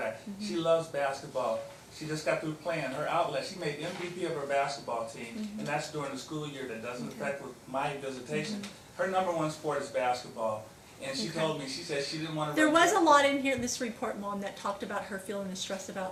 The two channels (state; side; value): identical; both; correlation 1.00